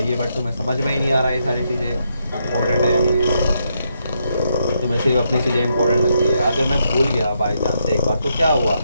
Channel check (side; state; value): both; inverted; correlation -0.79